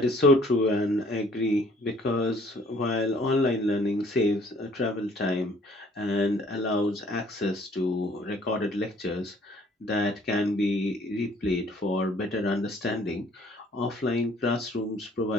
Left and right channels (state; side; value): normal; both; correlation 0.58